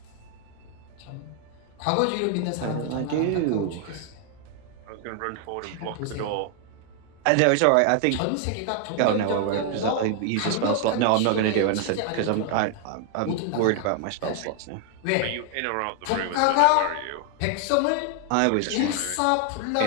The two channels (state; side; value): different; both; correlation 0.00